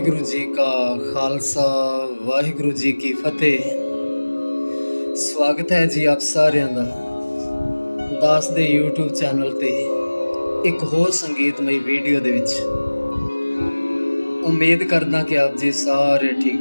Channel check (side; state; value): both; inverted; correlation -1.00